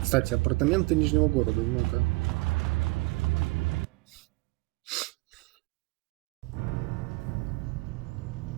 Кстати, апартаменты Нижнего города, ну-ка.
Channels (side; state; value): left; quieter; 24.4 dB